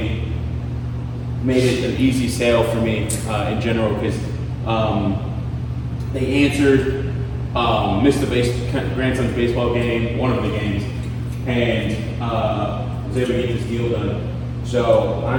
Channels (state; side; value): identical; both; correlation 1.00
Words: made it an easy sale for me in general, because they answered, missed the grandson's baseball game, one of the games, and was able to get this deal done. So